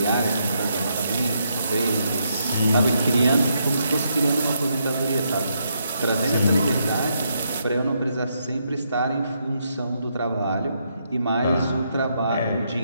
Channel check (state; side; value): inverted; both; correlation -0.78